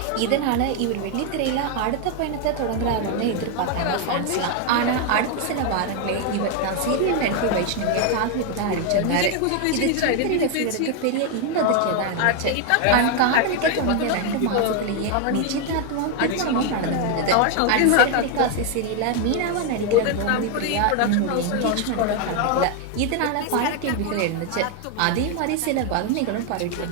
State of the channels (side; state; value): both; different; correlation 0.01